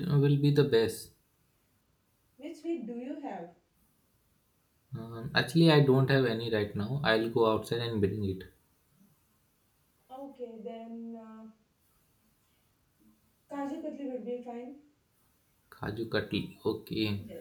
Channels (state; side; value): identical; both; correlation 1.00